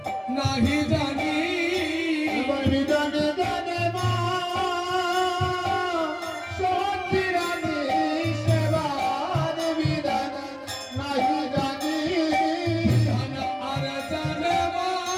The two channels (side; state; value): both; identical; correlation 1.00